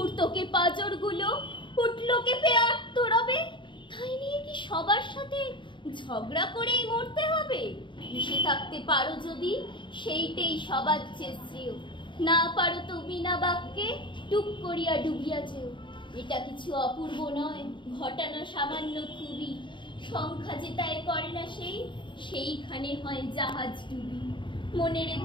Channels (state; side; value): late; right; 0.23 ms